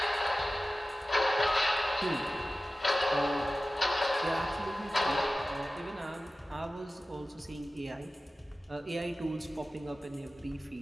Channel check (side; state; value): both; normal; correlation 0.96